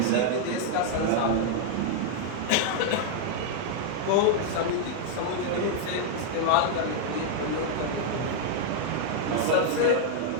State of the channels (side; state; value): both; different; correlation 0.00